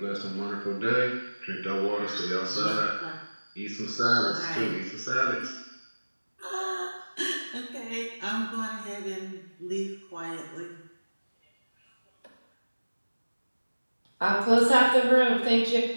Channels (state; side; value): inverted; both; correlation -1.00